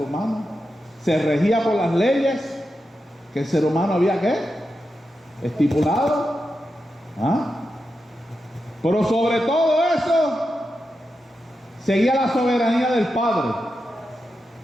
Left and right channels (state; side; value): normal; both; correlation 0.89